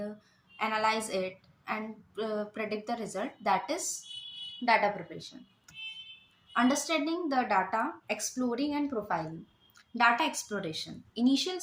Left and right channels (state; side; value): identical; both; correlation 1.00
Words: analyze it and predict the result, that is data preparation. Understanding the data, exploring and profiling. Data exploration. Initial